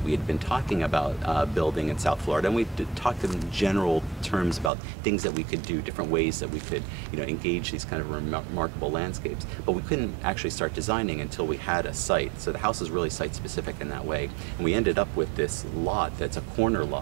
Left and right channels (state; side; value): drops out; left; at 4.7 s